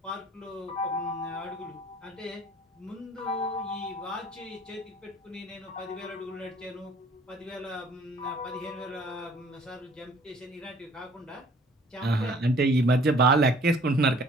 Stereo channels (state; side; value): normal; both; correlation 0.55